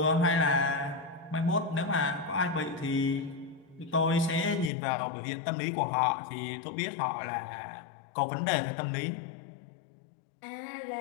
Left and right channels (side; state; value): right; drops out; at 4.7 s